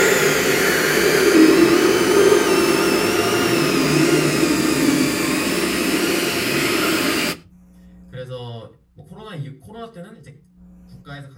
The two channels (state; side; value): identical; both; correlation 1.00